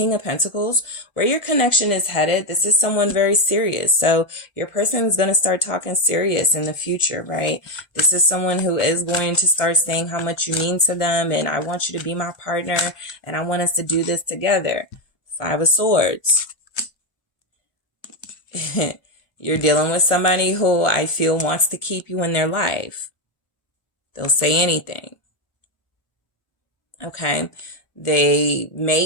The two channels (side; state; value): right; late; 1.0 ms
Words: of Pentacles, where your connection is headed, this is someone very serious. So your person is going to start talking serious in the future, right? This is someone who is going to start saying how much you mean to them, and I want you to be my partner, and I want us to do this together. 5 of Swords. You're dealing with somebody who I feel wants to keep you in their life. They'll say anything. Okay. They may